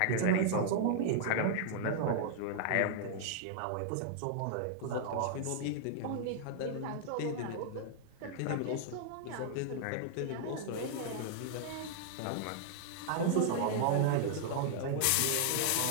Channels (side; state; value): both; different; correlation -0.01